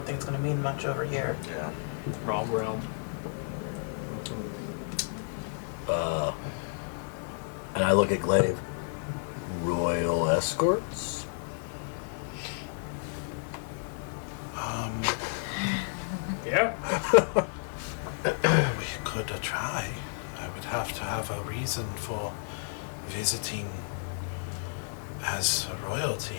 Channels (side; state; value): right; silent; digital silence